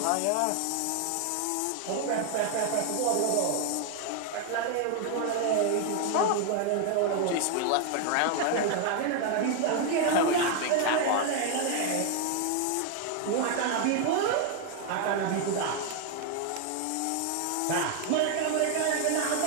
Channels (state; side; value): different; both; correlation 0.00